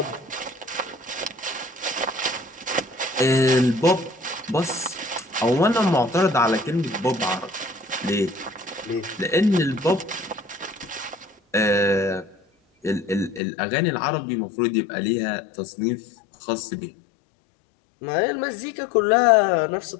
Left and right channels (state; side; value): drops out; right; at 13.4 s